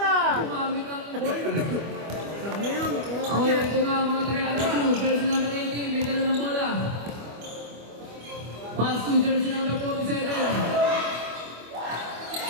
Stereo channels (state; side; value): late; left; 25 ms